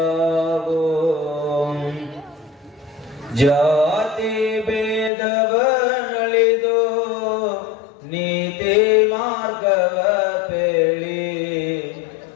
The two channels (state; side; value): drops out; right; at 5.1 s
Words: ಜಾತಿ ಭೇದವನಳಿದು ನೀತಿ ಮಾರ್ಗವ ಪೇಳಿ,